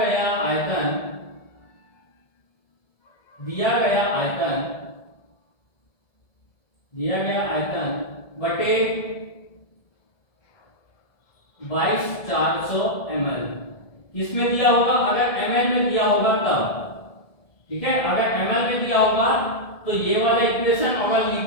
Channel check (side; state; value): right; late; 1.7 ms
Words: आयतन बटे 22,400 ml। किसमें दिया होगा, अगर ml में दिया होगा तब। ठीक है, अगर ml में दिया होगा तो ये वाला इक्वेशन, अगर